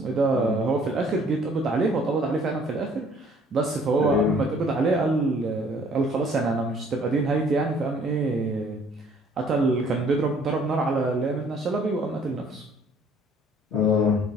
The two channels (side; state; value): both; normal; correlation 0.58